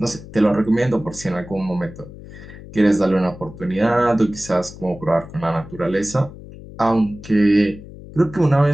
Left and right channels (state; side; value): noise; left; hum, 16 dB below the sound